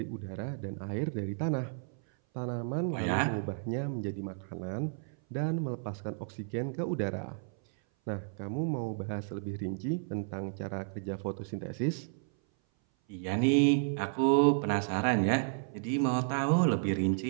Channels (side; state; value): left; silent; 56 dB below the other